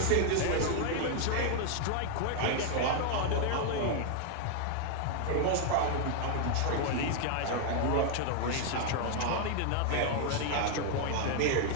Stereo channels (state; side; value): different; both; correlation 0.00